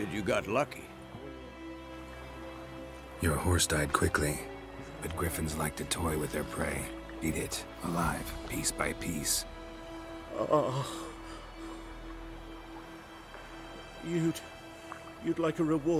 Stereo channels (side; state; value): both; identical; correlation 1.00